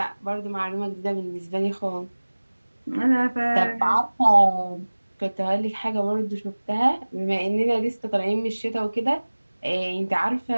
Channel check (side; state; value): both; inverted; correlation -1.00